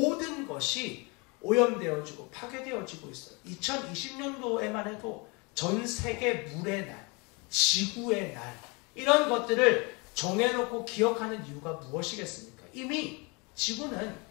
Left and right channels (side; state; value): right; quieter; 29.3 dB